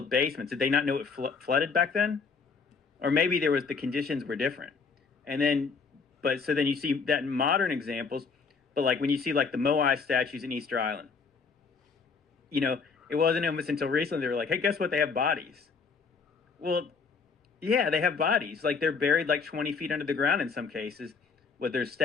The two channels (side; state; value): right; quieter; 5.2 dB